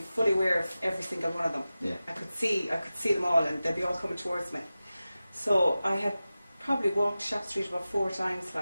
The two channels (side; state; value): both; inverted; correlation -0.95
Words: aware of every single one of them. Yeah. I could see them all, and they'd be all coming towards me. So I had probably walked Shop Street about 4 times,